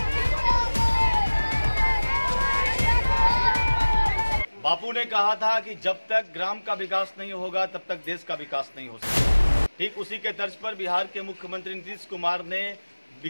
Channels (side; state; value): both; inverted; correlation -1.00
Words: बापू ने कहा था कि जब तक ग्राम का विकास नहीं होगा तब तक देश का विकास नहीं हो सकता। ठीक उसी के तर्ज पर बिहार के मुख्यमंत्री नीतीश कुमार ने